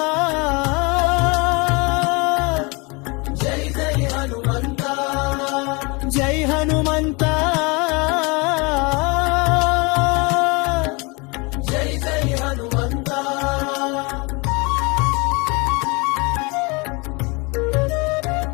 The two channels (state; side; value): quieter; right; 28.3 dB